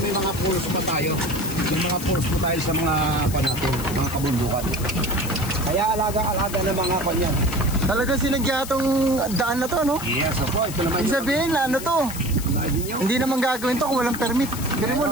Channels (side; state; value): left; noise; hiss, 11 dB below the sound